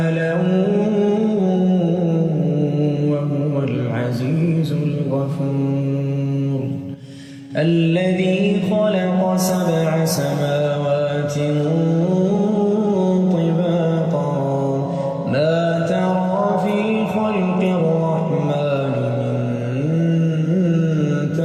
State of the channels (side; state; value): both; identical; correlation 1.00